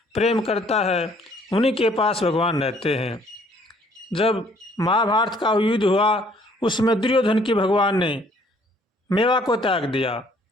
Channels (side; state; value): both; normal; correlation 0.61